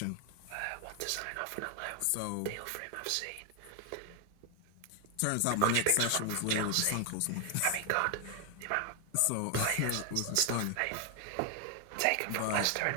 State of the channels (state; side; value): different; both; correlation 0.01